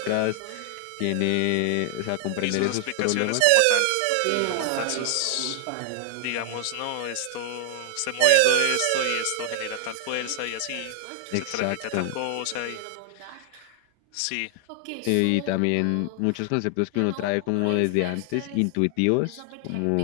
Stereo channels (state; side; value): different; both; correlation 0.00